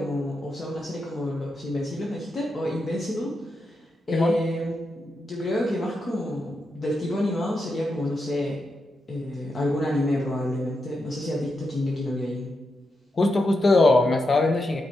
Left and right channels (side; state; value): both; normal; correlation 0.86